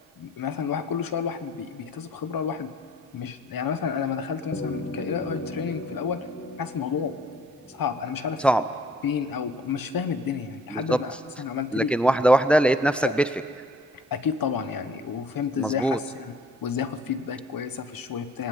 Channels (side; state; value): both; normal; correlation 0.55